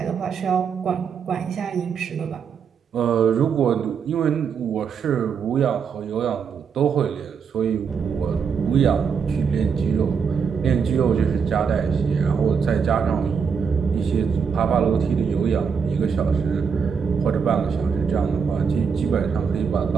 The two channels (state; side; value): quieter; left; 6.3 dB